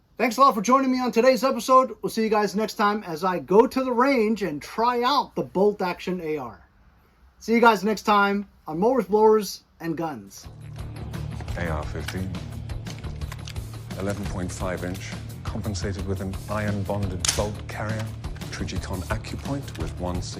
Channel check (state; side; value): identical; both; correlation 1.00